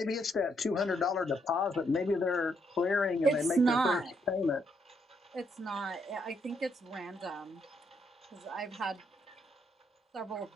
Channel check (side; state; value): both; normal; correlation 0.75